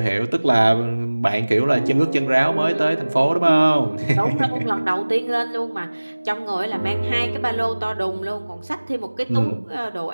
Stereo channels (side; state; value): both; inverted; correlation -1.00